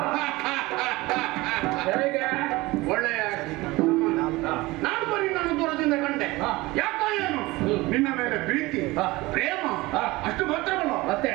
ಹೇಗೆ? ಒಳ್ಳೆಯ ನಾನು ಬರೀ ನನ್ನ ದೂರದಿಂದ ಕಂಡೆ. ಯಾಕೋ ಏನು ನಿನ್ನ ಮೇಲೆ ಪ್ರೀತಿ ಪ್ರೇಮ ಅಷ್ಟು ಮಾತ್ರವಲ್ಲ, ಮತ್ತೆ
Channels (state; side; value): quieter; left; 20.9 dB